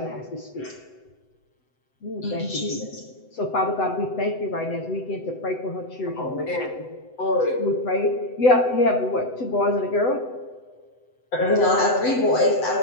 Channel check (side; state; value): right; late; 7.9 ms